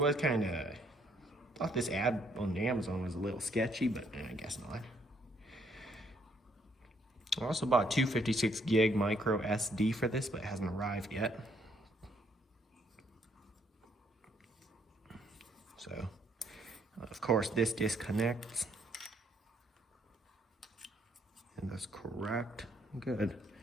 thought this ad on Amazon was a little sketchy, but I guess not. I also bought 256 gig micro SD for this, but it hasn't arrived yet. So, of course, this disconnects. And that's correct. Good.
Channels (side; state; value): both; normal; correlation 0.69